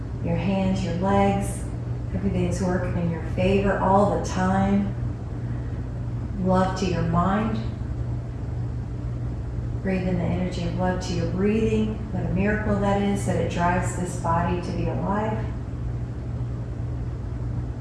your hands, your legs. Everything's working in your favor all the time. Love to your mind. Breathe in the energy of love to your breathing. What a miracle that is, that it drives this body to be alive.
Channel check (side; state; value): both; identical; correlation 1.00